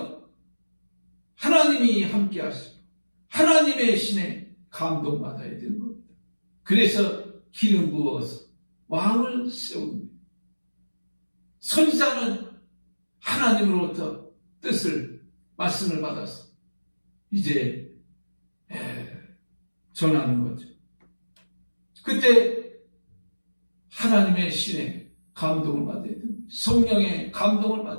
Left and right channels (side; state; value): both; inverted; correlation -1.00